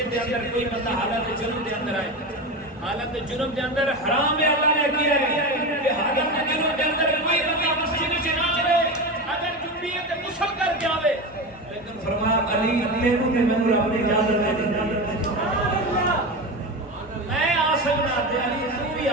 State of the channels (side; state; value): both; normal; correlation 0.22